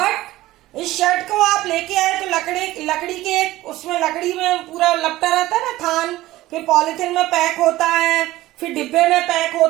इस शर्ट को आप लेके आए तो लकड़ी के उसमें लकड़ी में पूरा लपटा रहता है ना थान, फिर पॉलिथीन में पैक होता है, फिर डिब्बे में पैक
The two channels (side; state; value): left; quieter; 16.8 dB